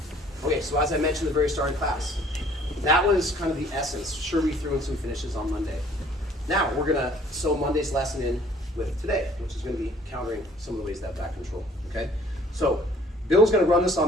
Okay, so as I mentioned at the very start of class, that was kind of the essence. Sure, we threw in some finishes on Monday. Now we're gonna sew Monday's lesson in with today, which is gonna be countering some of the ways that back control, okay? So Bill's gonna run this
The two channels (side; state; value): both; normal; correlation 0.56